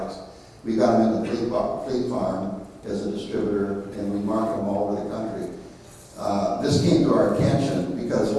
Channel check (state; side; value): identical; both; correlation 1.00